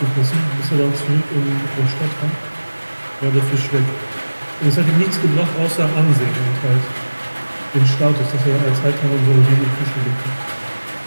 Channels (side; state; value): both; inverted; correlation -1.00